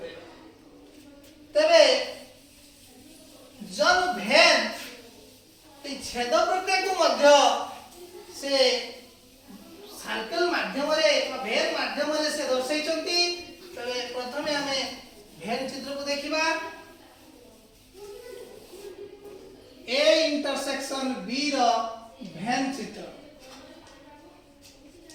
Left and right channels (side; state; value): both; identical; correlation 1.00